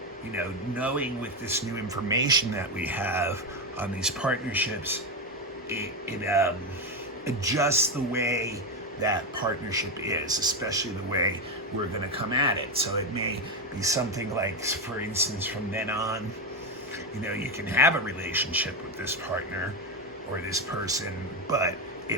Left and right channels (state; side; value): normal; both; correlation 0.11